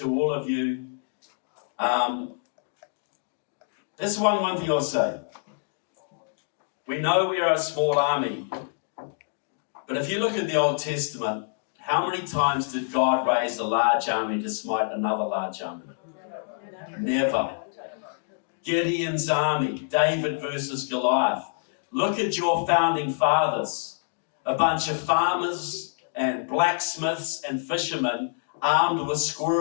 all of you, this is one thing I'll say. We know we are a small army, but if you look at the Old Testament, how many times did God raise a large army to smite another large army? Never. Gideon's army, David versus Goliath. Look at your founding fathers. A bunch of farmers and blacksmiths and fishermen armed with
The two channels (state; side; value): silent; right; digital silence